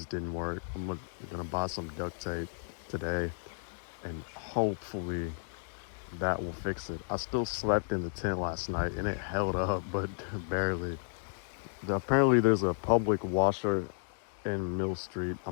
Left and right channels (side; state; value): right; silent; digital silence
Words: didn't work. I'm gonna buy some duct tape today, and hopefully that will fix it. I still slept in the tent last night and it held up, but barely. Apparently there's a public washer in Mill Street.